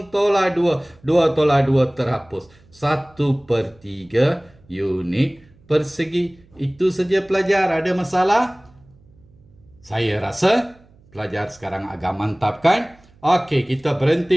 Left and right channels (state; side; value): noise; right; hum, 29 dB below the sound